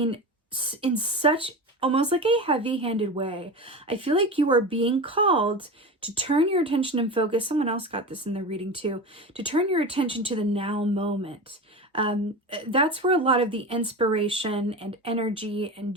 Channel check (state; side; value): normal; both; correlation 0.27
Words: in such almost like a heavy-handed way, I feel like you are being called to turn your attention and focus. Someone else got this in their reading too, to turn your attention to the now moment. That's where a lot of the inspiration and energy and